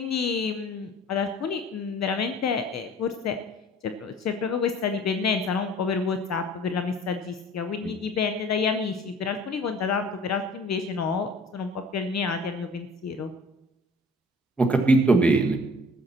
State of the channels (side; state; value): both; normal; correlation 0.49